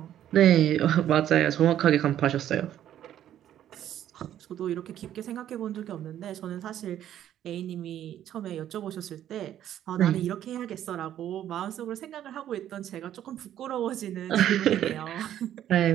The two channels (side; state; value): left; quieter; 11.3 dB